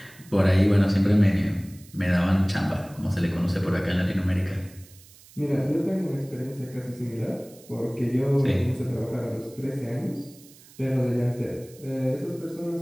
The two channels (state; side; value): noise; right; hiss, 24 dB below the sound